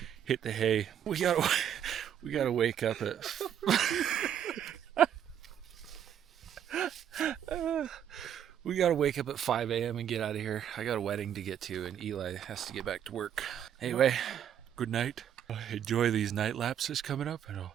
hit the hay. We gotta wake up at we gotta wake up at 5 a.m. and get out of here. I got a wedding to get to and Eli has to get back to work. Anyway, good night. Enjoy these night lapses coming up and I'll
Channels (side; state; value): left; quieter; 9.5 dB